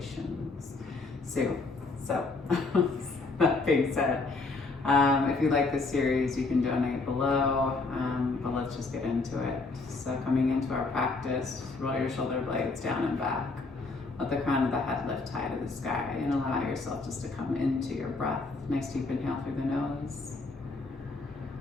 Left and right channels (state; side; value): quieter; right; 3.7 dB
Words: So that being said, if you like this series, you can donate below, but let's just get into it. So coming into our practice, roll your shoulder blades down and back. Let the crown of the head lift high to the sky, and allow yourself just to come into your breath. Nice deep inhale through the nose.